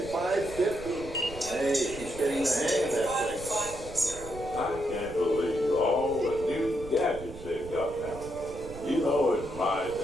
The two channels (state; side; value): noise; right; rumble, 14 dB below the sound